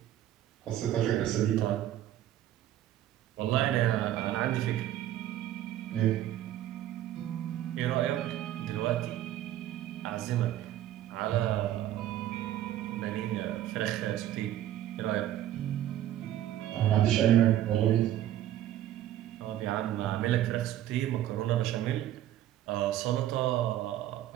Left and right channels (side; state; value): left; quieter; 12.5 dB